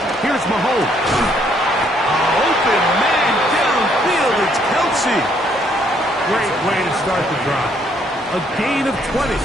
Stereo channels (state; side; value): normal; both; correlation 0.68